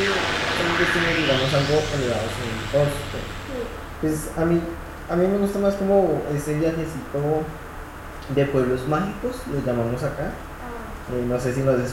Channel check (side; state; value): both; identical; correlation 1.00